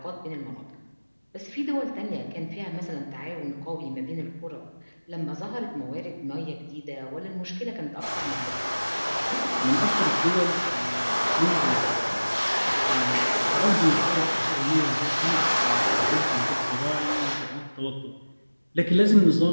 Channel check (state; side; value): inverted; both; correlation -1.00